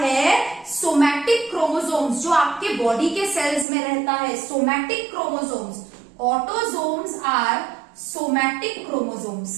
सोमैटिक क्रोमोसोम्स, जो आपके बॉडी के सेल्स में रहता है, somatic chromosomes. Autosomes are somatic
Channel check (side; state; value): left; drops out; at 3.7 s